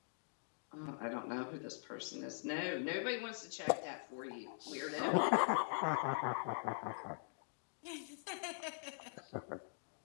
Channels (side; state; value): right; silent; digital silence